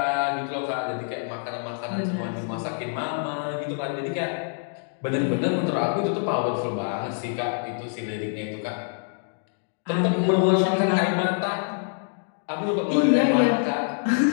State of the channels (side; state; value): right; silent; digital silence